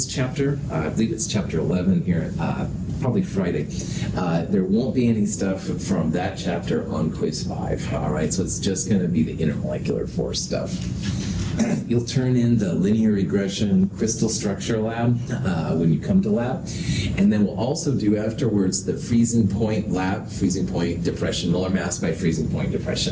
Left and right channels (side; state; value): both; identical; correlation 1.00